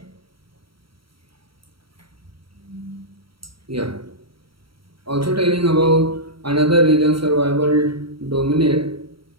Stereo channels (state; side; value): late; left; 0.74 ms